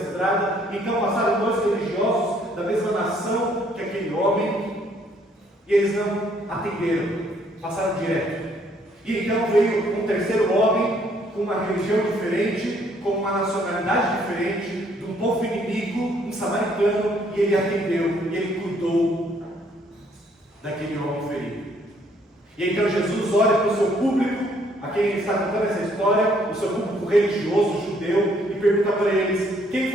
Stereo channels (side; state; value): both; normal; correlation 0.66